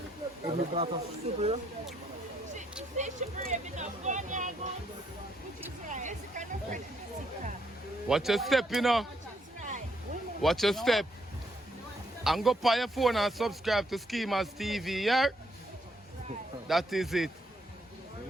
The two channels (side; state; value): both; normal; correlation 0.73